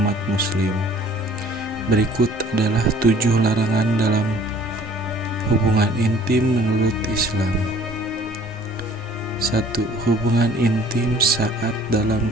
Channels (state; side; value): normal; both; correlation 0.53